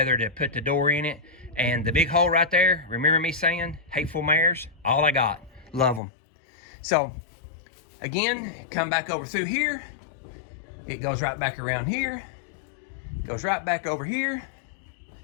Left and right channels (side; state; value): right; drops out; at 6.0 s